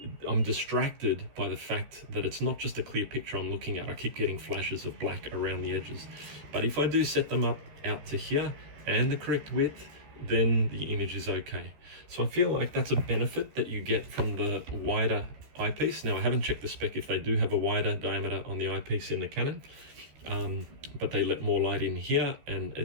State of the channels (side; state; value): left; late; 14 ms